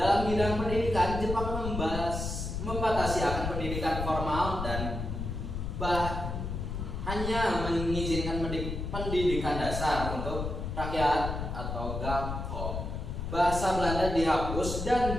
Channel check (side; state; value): left; noise; rumble, 4 dB below the sound